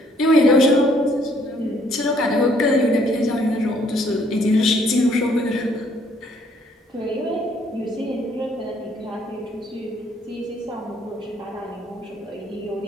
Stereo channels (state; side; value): normal; both; correlation 0.65